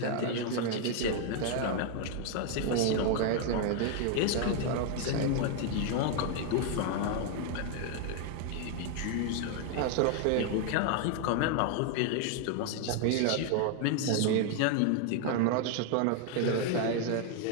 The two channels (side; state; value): both; different; correlation 0.00